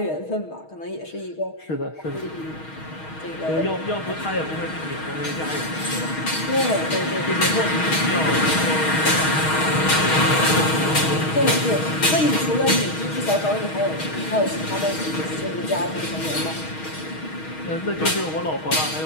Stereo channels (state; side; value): late; right; 6.4 ms